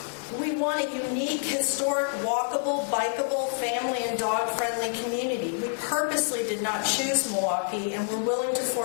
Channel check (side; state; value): right; silent; digital silence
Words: We want a unique, historic, walkable, bikeable, family and dog-friendly community. We purposely did not choose Milwaukee, and we're willing to